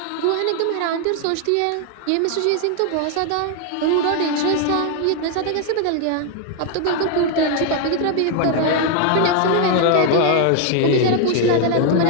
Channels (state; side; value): different; both; correlation 0.01